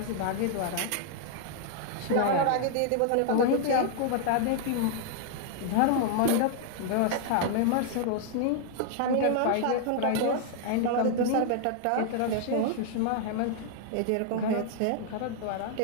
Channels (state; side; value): different; both; correlation 0.00